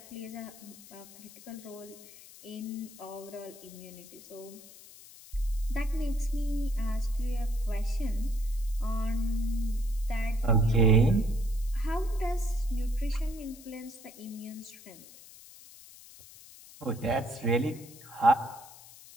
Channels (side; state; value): left; noise; hiss, 19 dB below the sound